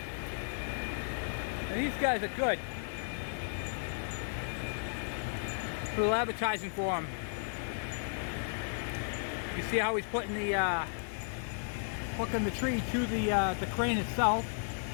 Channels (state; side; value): silent; right; digital silence